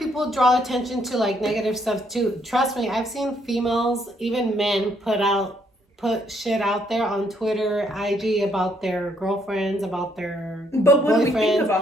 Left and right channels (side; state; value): both; normal; correlation 0.70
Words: draw attention to like negative stuff too. Trust me, I've seen females, even men, put shit out there on Twitter, IG about their girlfriends, about their But what do we think boyfriends.